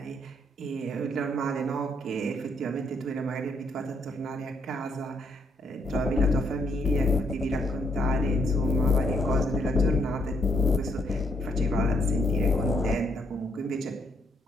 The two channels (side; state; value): both; normal; correlation 0.73